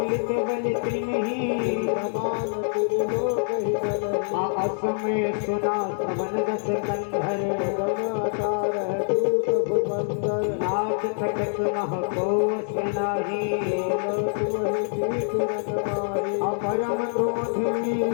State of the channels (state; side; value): silent; right; digital silence